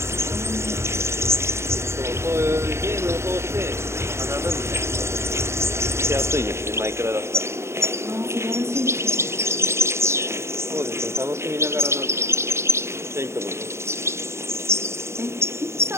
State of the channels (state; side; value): late; left; 0.13 ms